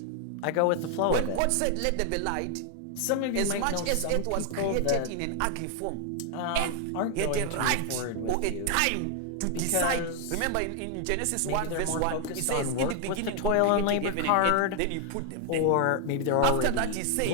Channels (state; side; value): different; both; correlation 0.00